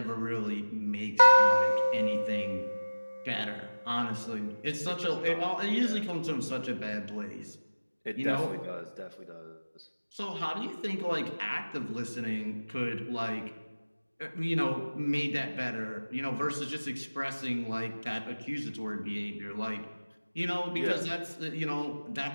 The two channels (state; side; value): inverted; both; correlation -1.00